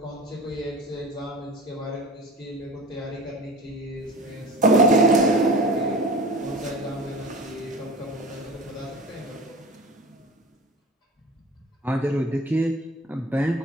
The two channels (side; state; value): both; normal; correlation 0.36